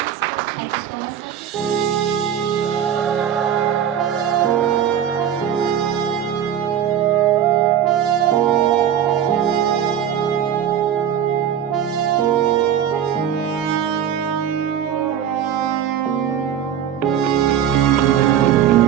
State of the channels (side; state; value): left; quieter; 9.5 dB